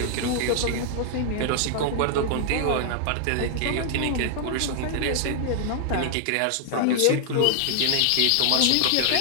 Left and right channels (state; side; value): different; both; correlation 0.00